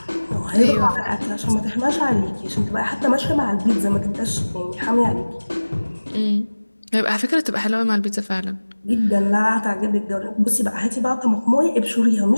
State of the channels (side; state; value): both; inverted; correlation -1.00